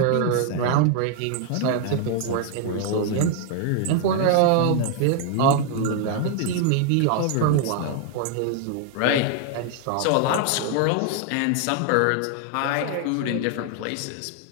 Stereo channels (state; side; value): different; both; correlation 0.00